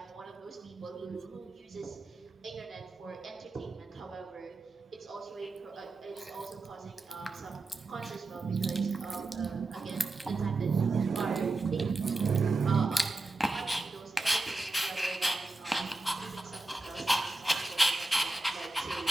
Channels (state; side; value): quieter; left; 3.0 dB